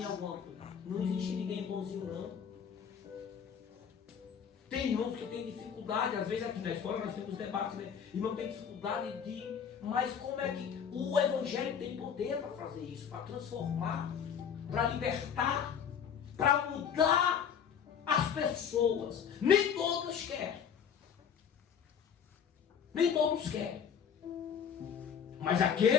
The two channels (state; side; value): quieter; right; 7.7 dB